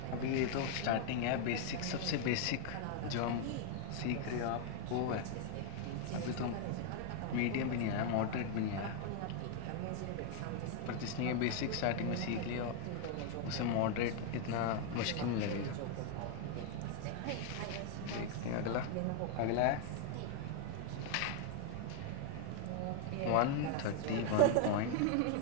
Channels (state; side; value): different; both; correlation 0.00